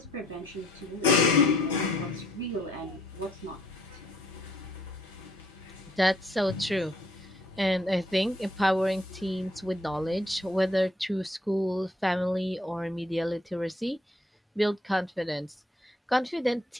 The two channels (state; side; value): normal; both; correlation 0.65